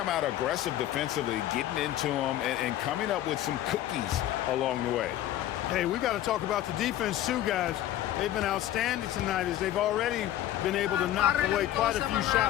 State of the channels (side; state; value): right; quieter; 13.0 dB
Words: out aggressive defensively, getting into them and coming up with some cookies along the way. Hey, we got to talk about the defense too, guys. They've been outstanding tonight as they've already been able to knock away quite a few